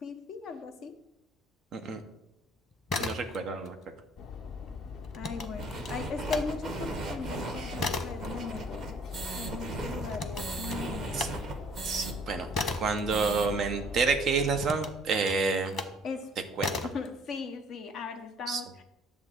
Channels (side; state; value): both; normal; correlation 0.57